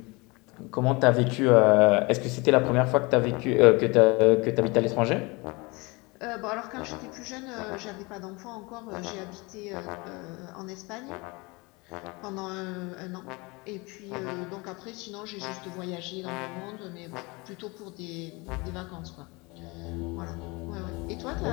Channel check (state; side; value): quieter; right; 26.1 dB